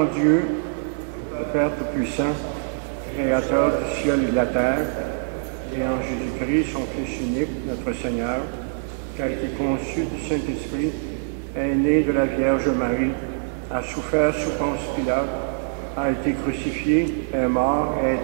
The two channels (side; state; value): left; silent; 63 dB below the other